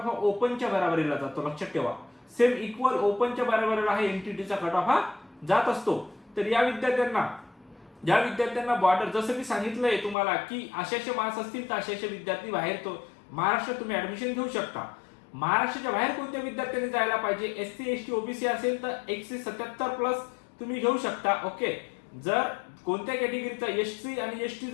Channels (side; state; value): right; drops out; at 10.2 s